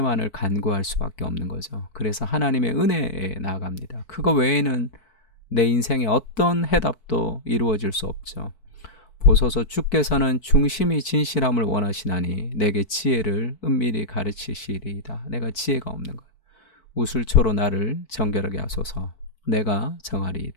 간구할 수밖에 없는 거죠. 그래서 하나님의 은혜에 나아갑니다. 그거 외에는 내 인생에 어떤 해답도 이루어질 수 없죠. 보소서 주께서는 중심이 진실함을 원하시나니 내게 지혜를 은밀히 가르치시리이다. 내가 지혜가 없는 것. 우슬초로 나를 정결하게 하소서. 내가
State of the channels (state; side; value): late; right; 4.6 ms